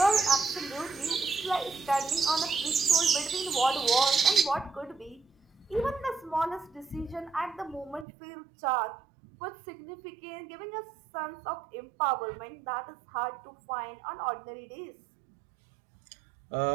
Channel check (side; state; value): left; drops out; at 8.1 s